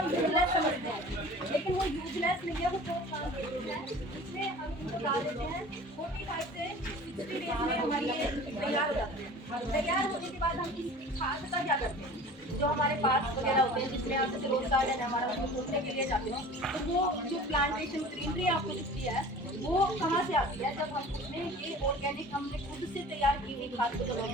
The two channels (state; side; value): normal; both; correlation 0.42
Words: यूजलेस समझते हैं, लेकिन वो यूजलेस नहीं है, वो बहुत काम करते हैं। इसमें हम इनको डाल देते हैं 45 से 60 डेज में हमारी ये तैयार हो जाते हैं। तैयार होने के बाद हम इसकी खाद का क्या करते हैं, जो हमारे पास वगैरह होते हैं जिसमें आप जैसे रोज गार्डन है हमारा, उसको खोदने के लिए जाते हैं, तो वो जो प्लांटेशन ग्रीनरी आपको दिखती है वो कहाँ से आती है, जब हम उसमें ये ऑर्गेनिक हमने खुद से तैयार की हुई खाद को जब हम